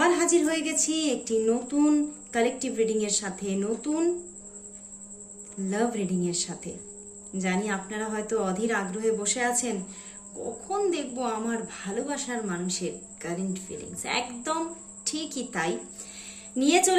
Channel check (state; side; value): identical; both; correlation 1.00